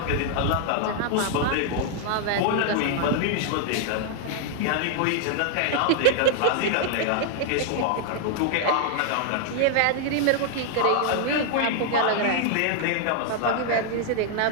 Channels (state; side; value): different; both; correlation 0.00